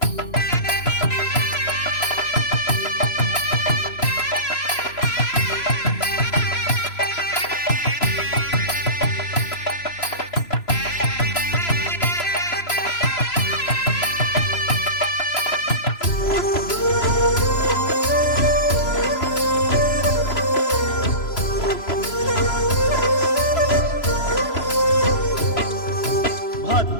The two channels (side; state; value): right; late; 3.0 ms